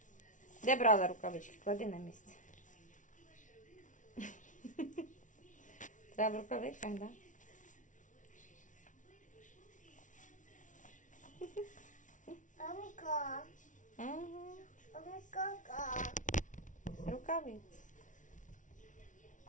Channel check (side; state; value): right; late; 0.37 ms